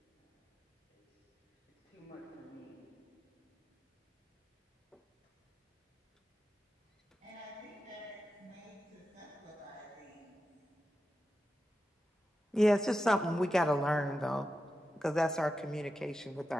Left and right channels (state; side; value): normal; both; correlation 0.90